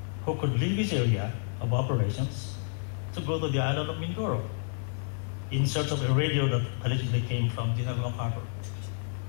who could leave his area of operations to go to the island of Mindoro in search of a radio that allegedly came from General MacArthur.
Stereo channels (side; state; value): right; silent; digital silence